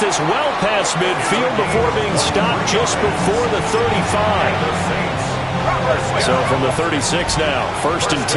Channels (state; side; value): identical; both; correlation 1.00